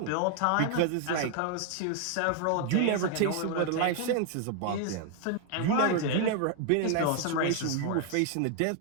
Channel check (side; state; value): both; different; correlation 0.00